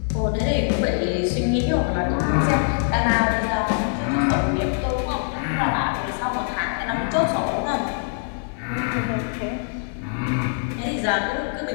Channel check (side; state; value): right; silent; 63 dB below the other